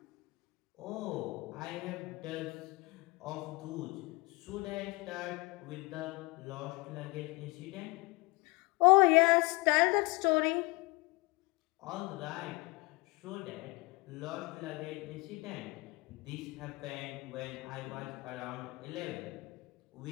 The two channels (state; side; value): quieter; right; 25.3 dB